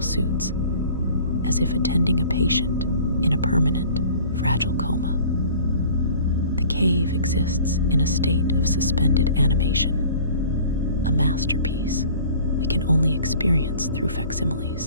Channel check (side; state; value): both; inverted; correlation -0.47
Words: suits, as if attending a patient in a permanent, fragile coma. The cave exists in a state of suspended animation, a masterpiece we can only experience through